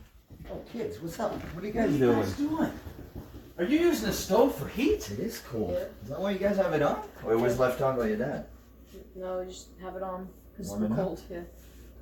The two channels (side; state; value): both; identical; correlation 1.00